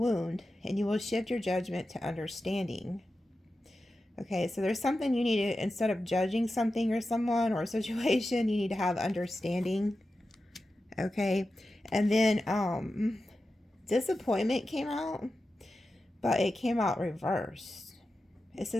and you will shift your judgment to understanding. Okay, so there's something you need to, instead of judging something or someone or a situation, you need to have understanding. Okay, and then disappointment came out, but it came out reversed. It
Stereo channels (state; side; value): normal; both; correlation 0.92